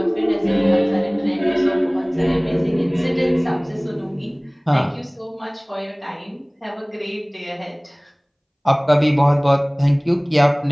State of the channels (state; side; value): identical; both; correlation 1.00